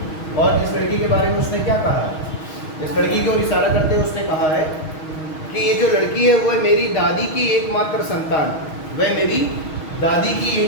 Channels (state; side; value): late; right; 6.3 ms